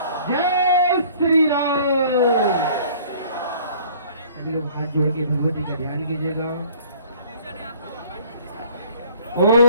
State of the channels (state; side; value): inverted; both; correlation -0.53